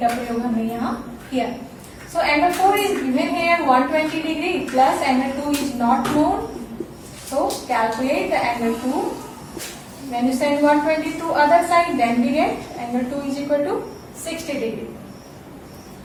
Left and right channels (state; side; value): identical; both; correlation 1.00